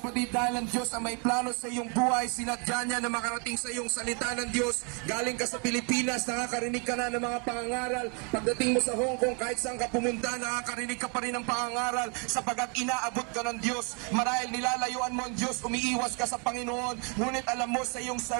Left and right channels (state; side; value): quieter; left; 35.7 dB